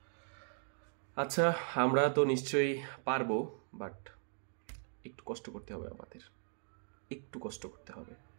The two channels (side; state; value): left; silent; 52 dB below the other